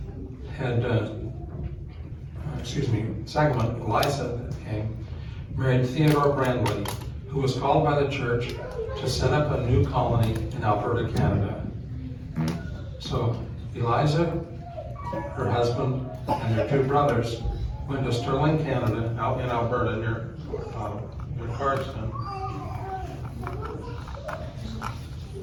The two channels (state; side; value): identical; both; correlation 1.00